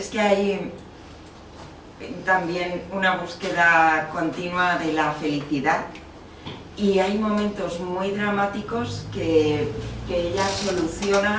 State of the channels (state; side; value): identical; both; correlation 1.00